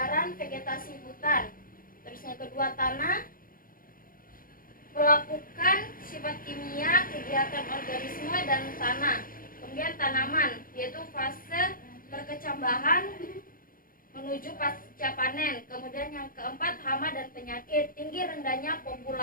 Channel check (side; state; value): right; late; 0.41 ms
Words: vegetasi hutan. Terus yang kedua tanah. Pelapukan sifat kimia, kegiatan organisme dan tanah. Kemudian tanaman, yaitu fase perkecambahan menuju pasca panen. Kemudian yang keempat hama dan penyakit, tinggi rendahnya